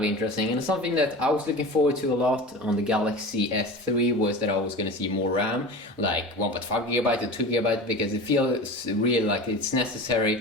interesting, and something that I was looking forward to a lot on the Galaxy S3 was that I was going to see more RAM, like 1.5 gigabyte or 2 gigabyte, because it feels really like it's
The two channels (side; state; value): both; normal; correlation 0.32